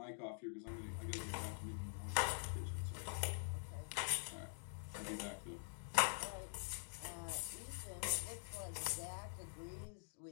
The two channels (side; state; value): right; silent; digital silence